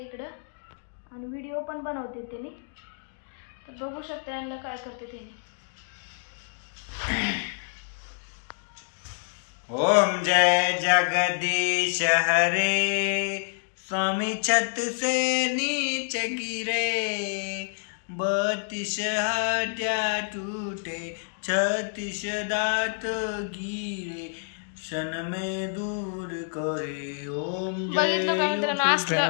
इकडं, आणि व्हिडिओ पण बनवते त्यांनी. तर बघू शकते ह्यांना काय करते त्यांनी. ओम जय जगदीश हरे, स्वामी छत से नीचे गिरे, 32 हड्डियां टूटे, 36 दांत गिरे, क्षण में दूर करे. ओम बघितलं का मित्रांनो,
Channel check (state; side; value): silent; right; digital silence